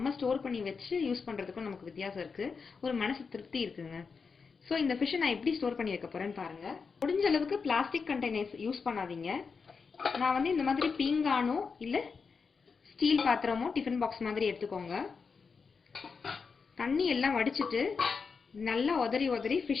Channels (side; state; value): right; quieter; 5.2 dB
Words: ஸ்டோர் பண்ணி வச்சு யூஸ் பண்ணுறதுக்கும் நமக்கு வித்தியாசம் இருக்குது. ஒரு மனசு திருப்தி இருக்குங்க. ஸோ இந்த ஃபிஷ்ஷை நான் எப்படி ஸ்டோர் பண்ணி வைக்க போகிறேன்னு பாருங்கள். முடிஞ்ச அளவுக்கு பிளாஸ்டிக் கண்டெய்னர்ஸ் யூஸ் பண்ணாதீங்க. நான் வந்து இந்த மாதிரி பீங்கானோ இல்லை ஸ்டீல் பாத்திரமோ டிஃபன் பாக்ஸ் மாதிரி எடுத்துக்கோங்க. தண்ணி எல்லாம் வடிச்சிட்டு நல்லா உதறி